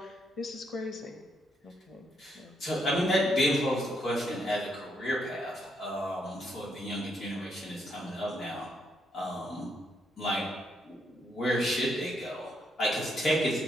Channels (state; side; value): normal; both; correlation 0.76